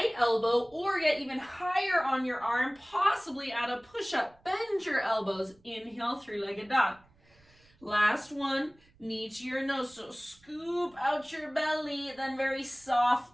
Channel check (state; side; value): noise; right; rumble, 30 dB below the sound